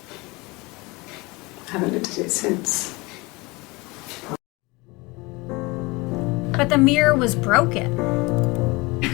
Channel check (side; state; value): right; quieter; 24.5 dB